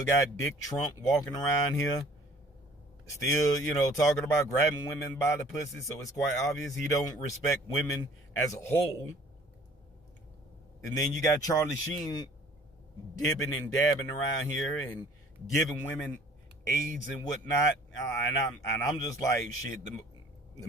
got Dick Trump walking around here. Still, talking about grabbing women by the pussy. So it's quite obvious he don't respect women as a whole. And then you got Charlie Sheen dipping and dabbing around here and giving women AIDS and whatnot. And I'm just like, shit, the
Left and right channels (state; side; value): normal; both; correlation 0.53